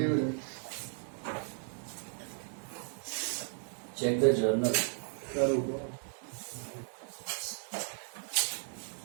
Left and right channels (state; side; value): silent; left; 54 dB below the other